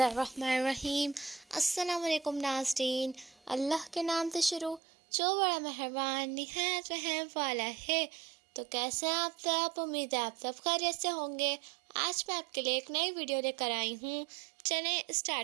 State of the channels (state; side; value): drops out; left; at 4.8 s